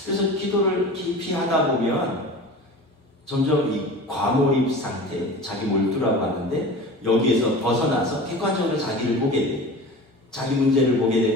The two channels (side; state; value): both; normal; correlation 0.35